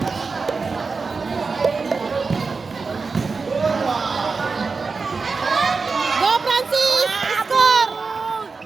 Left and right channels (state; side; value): quieter; left; 4.5 dB